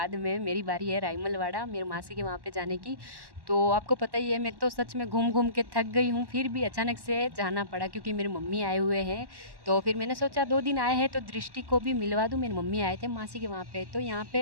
में मेरी बारी है रायमलवाड़ा, मेरी मासी के वहाँ पे जाने की। तो आपको पता ही है, मैं तो सच में घूम के थक गई हूँ, फिर भी अचानक से जाना पड़ा क्योंकि मेरी मम्मी आए हुए हैं। तो फिर मैंने सोचा 2 दिन आए हैं तो दृष्टि को भी मिलवा दूँ। मेरी मम्मी आए थे मासी के वहाँ पे, तो यहाँ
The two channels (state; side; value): late; left; 1.1 ms